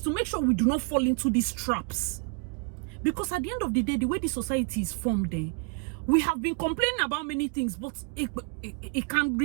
to make sure we do not fall into these traps. Because at the end of the day, the way the society is formed, We have been complaining about many things, but it can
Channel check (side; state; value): left; quieter; 34.3 dB